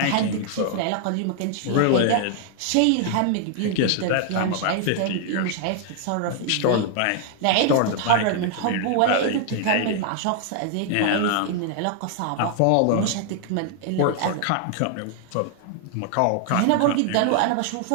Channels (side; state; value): both; different; correlation 0.00